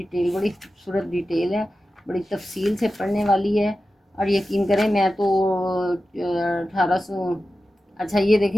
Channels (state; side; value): normal; both; correlation 0.93